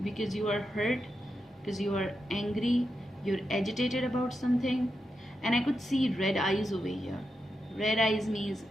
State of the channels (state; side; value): normal; both; correlation 0.87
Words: because you are hurt, because you are angry, you're agitated about something. And I could see red eyes over here. Red eyes means